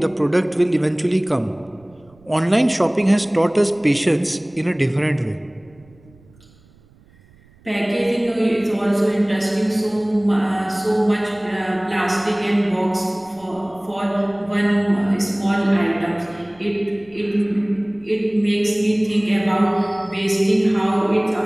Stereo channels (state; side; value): noise; right; rumble, 28 dB below the sound